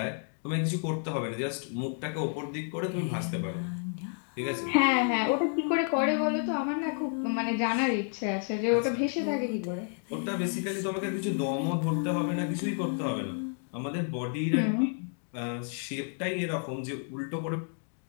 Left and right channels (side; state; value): right; silent; 57 dB below the other